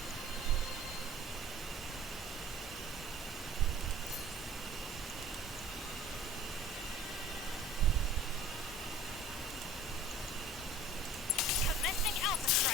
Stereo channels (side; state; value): both; normal; correlation 0.45